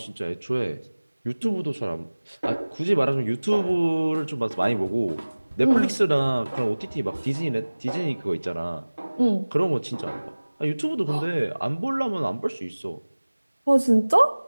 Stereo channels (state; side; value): inverted; both; correlation -1.00